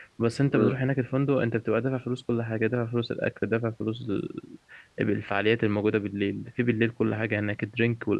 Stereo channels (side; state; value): both; identical; correlation 1.00